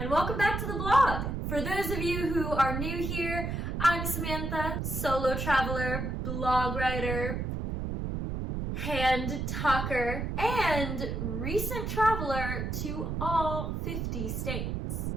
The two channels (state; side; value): noise; right; rumble, 2 dB below the sound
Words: and welcome back to the blog. For those of you who are new here, I'm Samantha, solo traveler, blog writer, hand talker, and recent traveler to all 50 states.